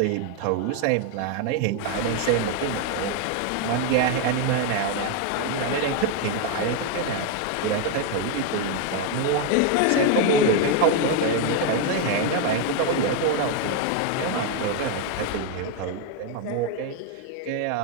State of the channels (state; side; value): different; both; correlation 0.01